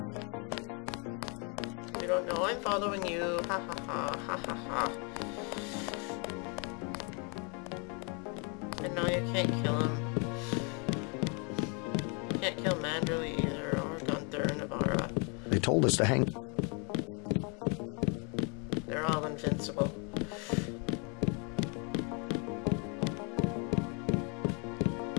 I'm following you. Ha ha ha, ha ha ha. And no, you can't kill him. You can't kill Manderley either, or Gunther and Navarra. They told us to hang. They're all invincible.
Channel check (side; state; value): right; quieter; 34.7 dB